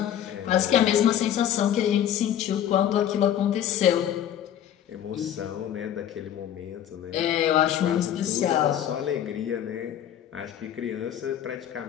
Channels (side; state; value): right; quieter; 10.5 dB